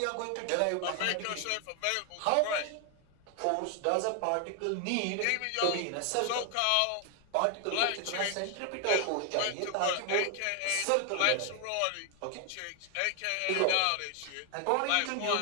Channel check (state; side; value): different; both; correlation 0.00